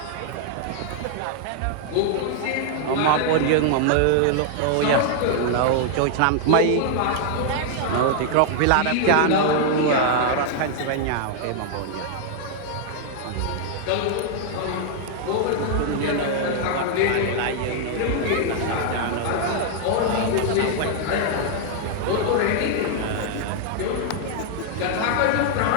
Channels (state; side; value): different; both; correlation 0.00